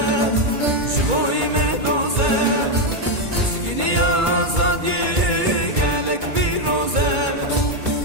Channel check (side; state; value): left; late; 2.2 ms